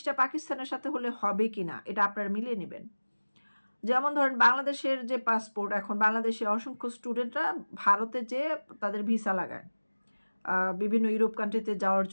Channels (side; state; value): both; inverted; correlation -1.00